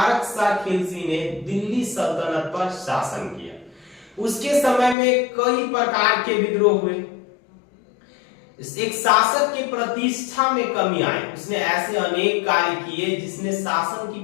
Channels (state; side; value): drops out; right; at 5.0 s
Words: सा खिलजी ने दिल्ली सल्तनत पर शासन किया। उसके समय में कई प्रकार के विद्रोह हुए। एक शासक की प्रतिष्ठा में कमी आई। उसने ऐसे अनेक कार्य किए जिसने शासन की